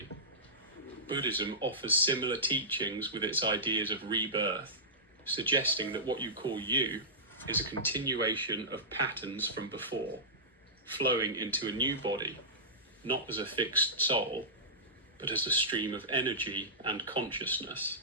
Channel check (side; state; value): both; normal; correlation -0.16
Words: Buddhism offers similar teachings with its ideas of rebirth, suggesting that what you call you is a continuation of patterns from before, flowing into a new body, not as a fixed soul, but as a stream of energy and consciousness.